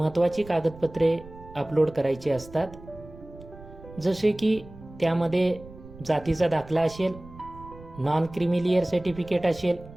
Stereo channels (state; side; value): noise; right; rumble, 18 dB below the sound